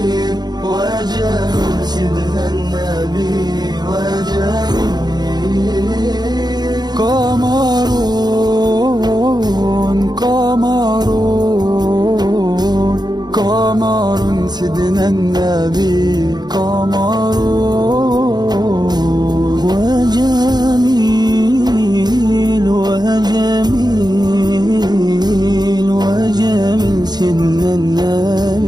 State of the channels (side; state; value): left; late; 0.20 ms